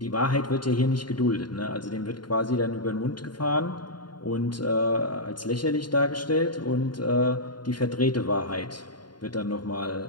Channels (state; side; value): late; right; 0.71 ms